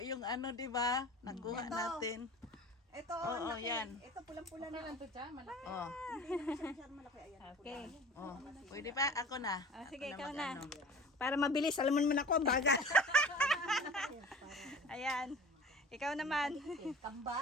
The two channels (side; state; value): both; normal; correlation 0.41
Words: yung ano, di ba? Nakuha Ito. natin. Ito, Oo, laki. yan. Ito pulang-pula Okay na. lang to, Cha. Malaki. Oh. Hindi naman siya masyadong malaki. Ayan. Okay. Oh. Pwede pa? Ako na. Ah, sige, Ako ikaw mag-ano. na. Para mabilis, alam mo naman ako, ang bagal. Ayan. Ikaw naman.